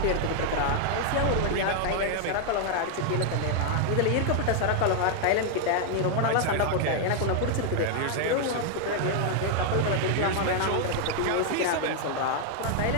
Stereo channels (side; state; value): both; different; correlation 0.00